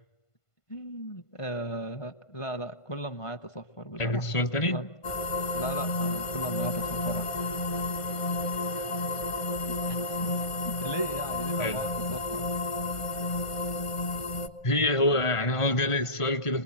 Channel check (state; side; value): late; right; 1.5 ms